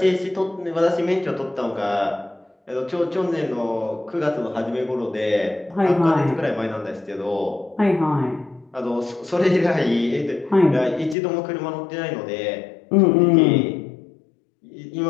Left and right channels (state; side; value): drops out; right; at 11.2 s